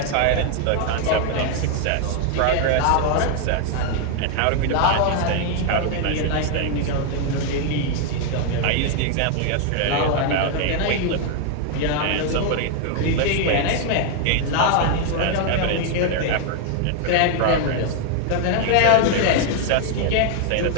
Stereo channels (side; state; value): both; different; correlation 0.00